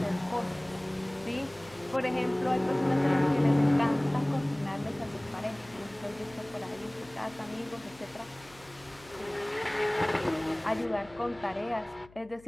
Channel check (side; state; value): left; noise; hum, 24 dB below the sound